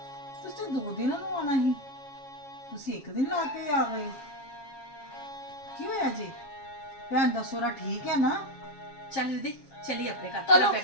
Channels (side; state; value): right; late; 7.4 ms